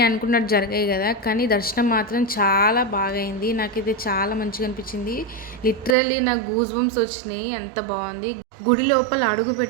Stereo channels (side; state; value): left; drops out; at 6.0 s